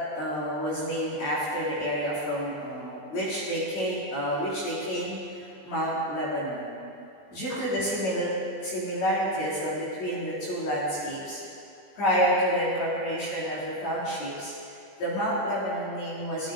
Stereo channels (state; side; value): late; right; 20 ms